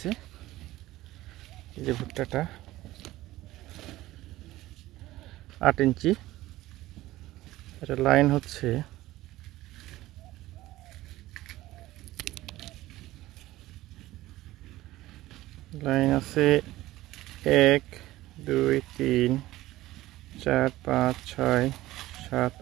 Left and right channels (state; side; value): quieter; left; 16.7 dB